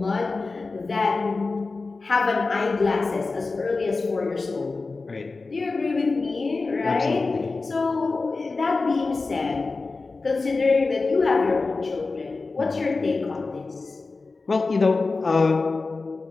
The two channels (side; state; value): right; quieter; 3.8 dB